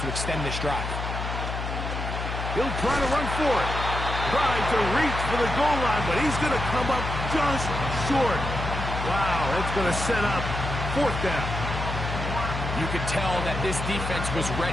to extend this drive. He'll try to run for it. Tried to reach for the goal line, but he's going to come up just short. Wow, that's going to set up 4th down. You could tell that this defense was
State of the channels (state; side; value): noise; left; hum, 4 dB below the sound